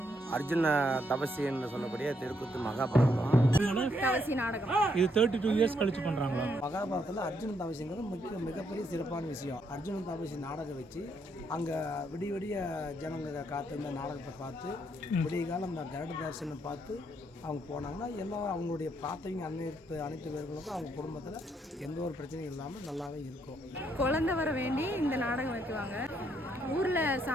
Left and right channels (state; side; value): normal; both; correlation 0.74